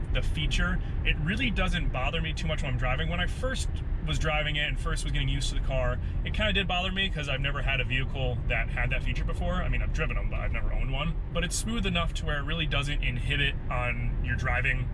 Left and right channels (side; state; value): both; identical; correlation 1.00